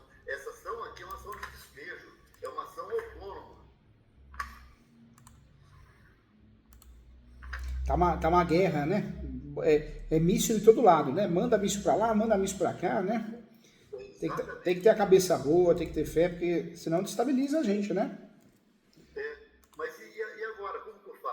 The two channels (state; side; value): identical; both; correlation 1.00